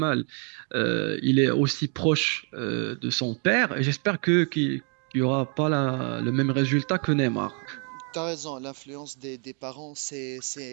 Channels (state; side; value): quieter; left; 38.2 dB